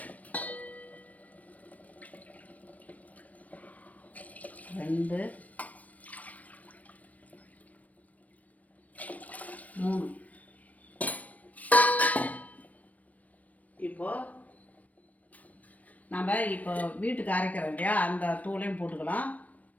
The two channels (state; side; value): late; right; 0.071 ms